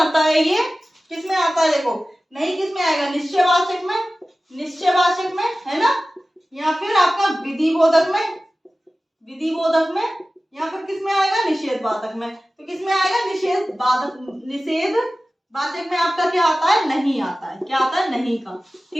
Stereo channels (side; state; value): both; normal; correlation 0.96